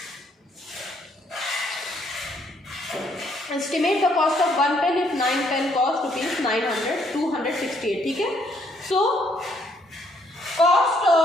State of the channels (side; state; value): both; normal; correlation 0.69